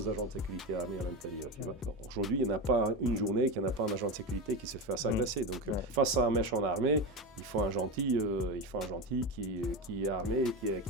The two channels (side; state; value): both; normal; correlation 0.18